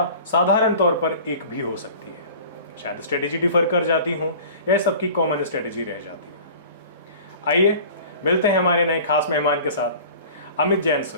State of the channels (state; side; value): inverted; both; correlation -0.43